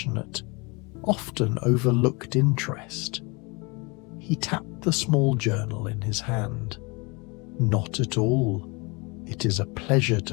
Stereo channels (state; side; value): quieter; right; 28.5 dB